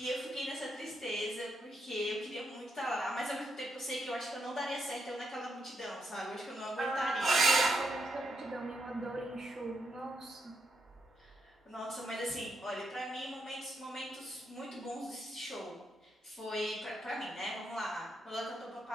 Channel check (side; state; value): both; normal; correlation 0.81